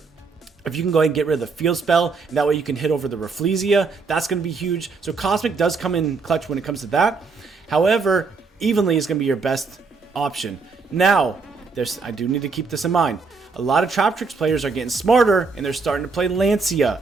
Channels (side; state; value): left; quieter; 4.5 dB